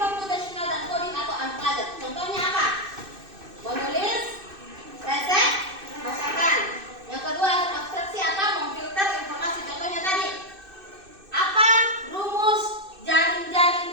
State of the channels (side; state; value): left; late; 2.6 ms